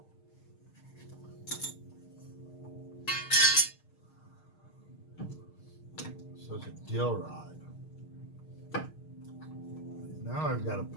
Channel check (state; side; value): late; right; 6.5 ms